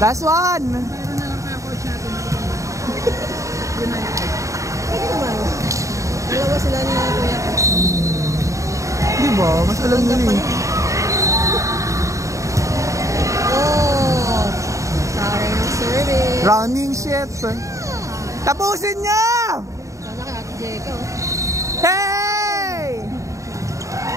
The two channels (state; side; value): late; left; 0.15 ms